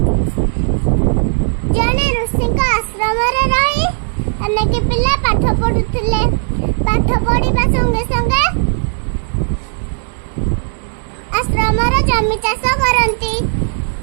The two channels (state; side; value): silent; left; 69 dB below the other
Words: ଜଣେ ଋଷିଙ୍କ ଆଶ୍ରମରେ ରହି ଅନେକ ପିଲା ପାଠ ପଢୁଥିଲେ। ପାଠ ପଢିବା ସଙ୍ଗେ ସଙ୍ଗେ ଆଶ୍ରମର ଜମି ଚାଷ କରନ୍ତି